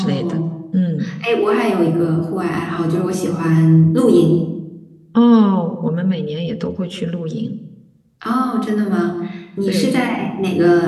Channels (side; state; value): both; identical; correlation 1.00